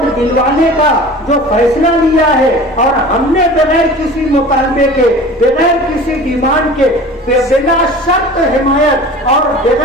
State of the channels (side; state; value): both; normal; correlation 0.39